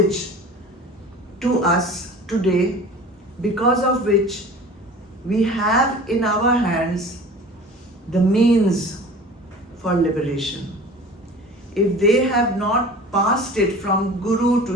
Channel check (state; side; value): normal; both; correlation 0.41